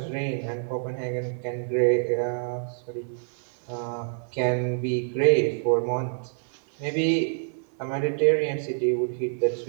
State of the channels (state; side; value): silent; left; digital silence